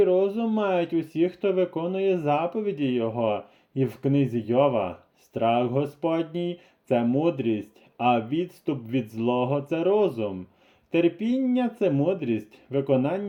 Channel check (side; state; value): both; identical; correlation 1.00